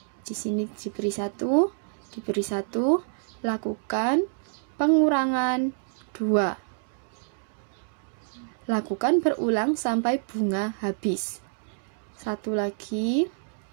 Di sini diberi 1, lakukan pengurangan 2. Lakukan berulang sampai bunga habis. 1 lagi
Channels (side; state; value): left; silent; digital silence